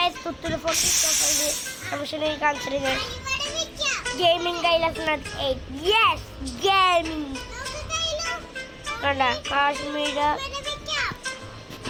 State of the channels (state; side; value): identical; both; correlation 1.00